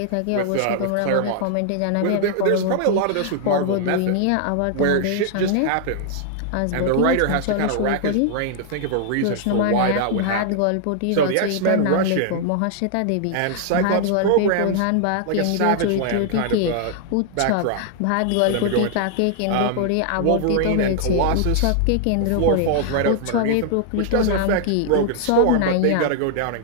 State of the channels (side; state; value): both; different; correlation -0.01